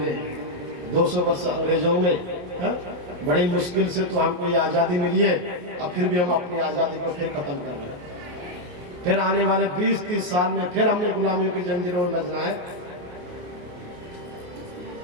200 वर्ष अंग्रेजों में, है? बड़ी मुश्किल से तो हमको ये आजादी मिली है। अब फिर भी हम अपनी आजादी को फिर खत्म कर रहे हैं। फिर आने वाले 20-30 साल में फिर हमने गुलामियों की जंजीरों में बजना है।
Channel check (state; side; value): late; left; 28 ms